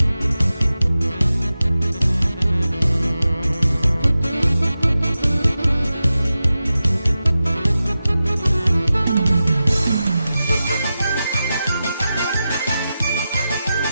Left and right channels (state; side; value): inverted; both; correlation -0.92